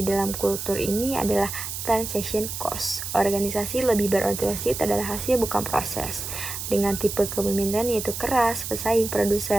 dalam kultur ini adalah transaction cost. Organisasi lebih berorientasi adalah hasil bukan proses. Dengan tipe kepemimpinan yaitu keras, pesaing,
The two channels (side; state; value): right; noise; hiss, 6 dB below the sound